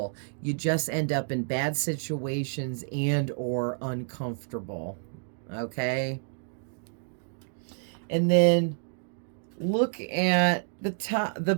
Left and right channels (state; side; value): silent; left; digital silence